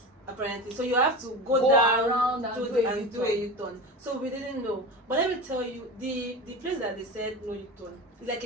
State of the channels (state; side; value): normal; both; correlation 0.28